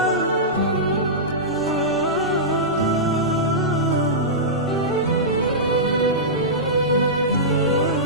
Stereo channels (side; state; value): both; normal; correlation -0.14